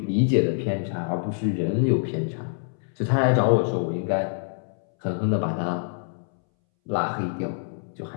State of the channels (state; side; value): silent; right; 61 dB below the other